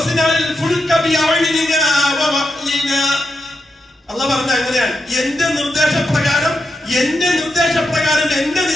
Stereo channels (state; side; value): normal; both; correlation 0.85